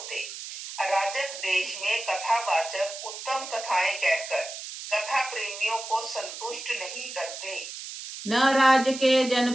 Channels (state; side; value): noise; right; hiss, 10 dB below the sound